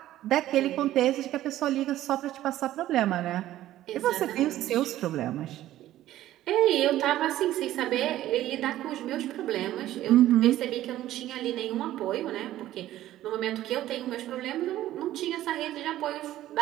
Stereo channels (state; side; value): quieter; left; 13.9 dB